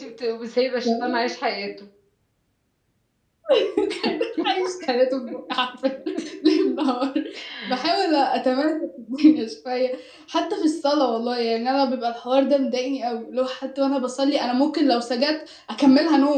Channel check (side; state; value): both; identical; correlation 1.00